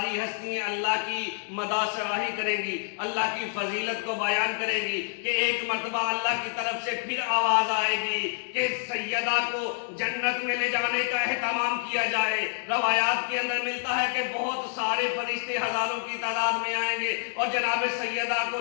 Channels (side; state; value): right; silent; digital silence